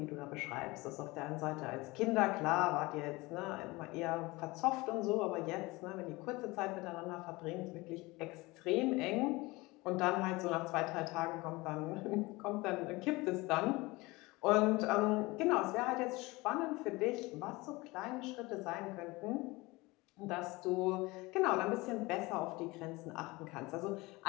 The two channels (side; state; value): right; quieter; 22.4 dB